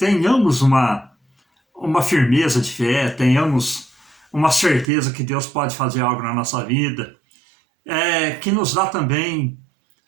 uma firmeza de fé, tenhamos uma certeza que Deus pode fazer algo na nossa vida, que nos dá também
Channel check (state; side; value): drops out; left; at 4.9 s